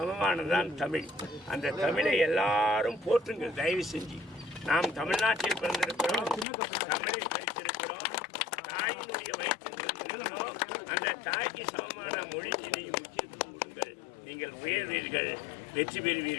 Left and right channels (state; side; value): drops out; right; at 6.5 s